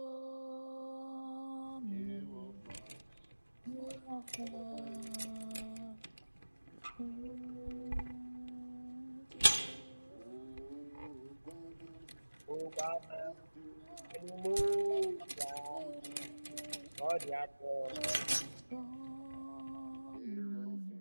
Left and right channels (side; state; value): both; inverted; correlation -1.00